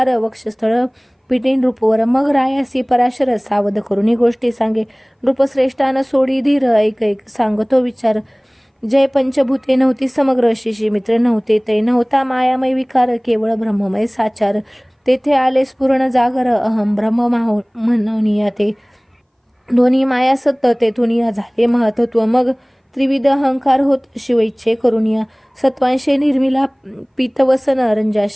वक्षस्थळ पिटी नृपवर मग रायासी पराशर सावध करुणी गोष्टी सांगे नृपश्रेष्ठान सोडी धीर ऐक सांगतो विचार जय पंचभूते नव्हती समग्र शिशी मित्र नव्हते ते नव्हता मायामय विकार केवळ ब्रह्ममय साचार तेथे आले स्फुरण जागर अहम ब्रह्म म्हणूनिया ते दोन्ही माया सत्य तेथून या झाले महत्त्व मग त्रिविध अहंकार होत शिवइच्छे करुनिया सत्वांशे निर्मिला पीतवसन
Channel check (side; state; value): both; identical; correlation 1.00